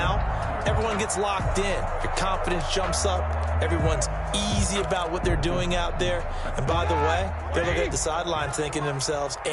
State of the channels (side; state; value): both; identical; correlation 1.00